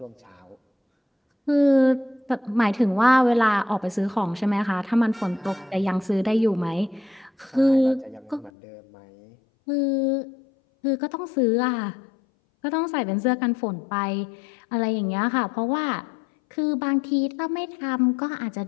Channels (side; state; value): right; drops out; at 8.5 s